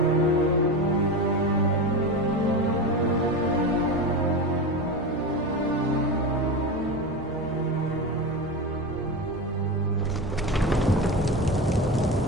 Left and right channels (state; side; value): normal; both; correlation 0.22